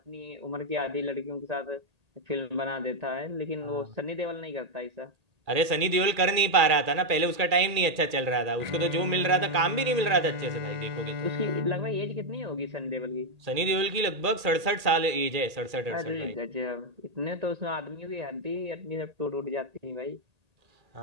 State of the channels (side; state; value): left; late; 1.8 ms